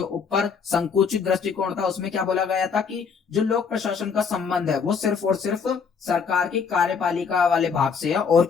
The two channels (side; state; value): right; quieter; 6.0 dB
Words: ऊपर संकुचित दृष्टिकोण था उसमें क्या बोला गया था कि जो लोक प्रशासन का संबंध है वो सिर्फ और सिर्फ सरकार की कार्यपालिका वाले भाग से है और